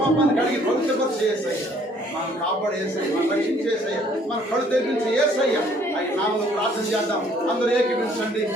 పాపాన్ని కడిగి పవిత్రపరిచి చేసాయి, మనం కాపాడేసాయి, మనం రక్షించేసాయి, మన కళ్ళు తెప్పించి ఏసయ్య అవి నామను ప్రార్థన చేద్దాం. అందరూ ఏకీపించండి.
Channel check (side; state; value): both; normal; correlation 0.61